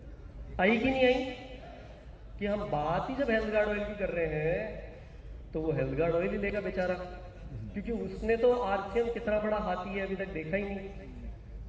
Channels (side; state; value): both; identical; correlation 1.00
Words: आई कि नहीं आई? कि हम बात ही जब हेल्थ गार्ड ऑयल की कर रहे हैं तो वो हेल्थ गार्ड ऑयल ही लेगा बेचारा, क्योंकि उसने तो आरसीएम कितना बड़ा हाथी है अभी तक देखा ही नहीं,